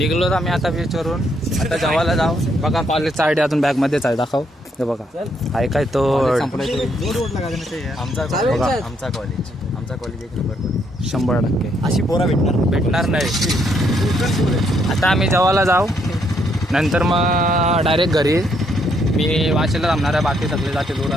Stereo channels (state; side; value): normal; both; correlation 0.73